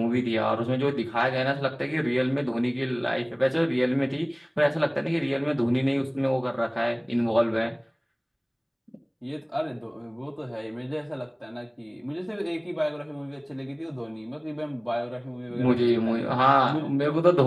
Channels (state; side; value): identical; both; correlation 1.00